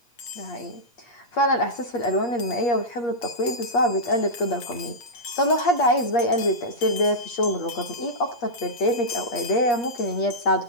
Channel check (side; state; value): right; late; 8.7 ms